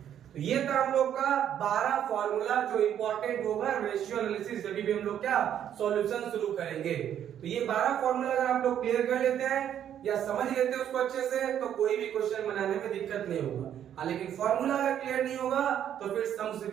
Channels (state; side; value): quieter; left; 10.0 dB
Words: तो ये था हम लोग का 12 फॉर्मूला जो इंपॉर्टेंट होगा रेशियो एनालिसिस जब भी हम लोग क्या सॉल्यूशन शुरू करेंगे। तो ये 12 फॉर्मूला अगर आप लोग क्लियर कर लेते हैं या समझ लेते हैं उसको अच्छे से, तो कोई भी क्वेश्चन बनाने में दिक्कत नहीं होगा। लेकिन फॉर्मूला अगर क्लियर नहीं होगा तो फिर सम्स